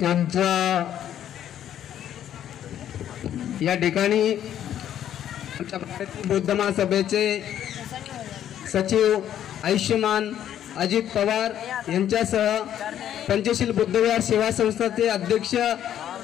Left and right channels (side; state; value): right; quieter; 10.7 dB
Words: यांचा या ठिकाणी आमच्या भारतीय बौद्ध महासभेचे सचिव आयुष्यमान अजित पवार यांच्यासह पंचशील बुद्धविहार सेवा संस्थाचे अध्यक्ष